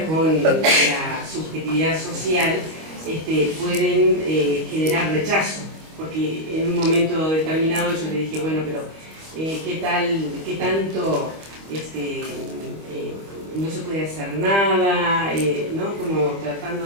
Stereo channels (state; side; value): late; left; 25 ms